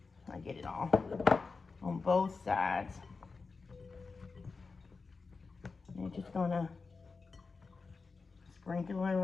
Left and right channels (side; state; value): right; quieter; 4.4 dB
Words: I get it all on both sides. just gonna sprinkle it